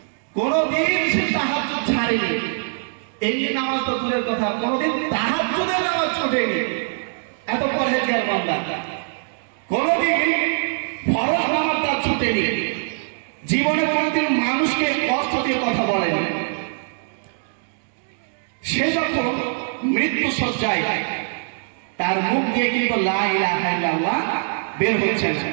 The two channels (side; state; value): left; silent; digital silence